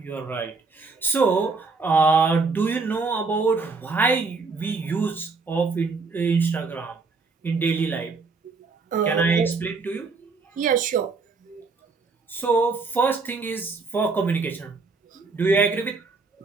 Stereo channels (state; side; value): quieter; left; 4.2 dB